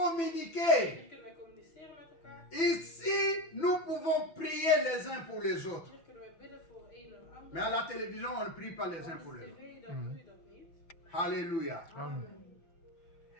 Hier kunnen wij communiceren met elkaar. Ici, nous pouvons prier les uns pour les autres. Hier kunnen wij bidden voor een en ander. Mais à la télévision, on ne prie pas les uns pour Op les autres. tv dan doe je dat niet. Alléluia. Amen.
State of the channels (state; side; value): late; right; 6.0 ms